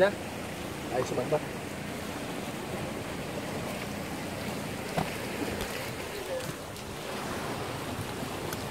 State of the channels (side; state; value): both; identical; correlation 1.00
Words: Ayos naman ba?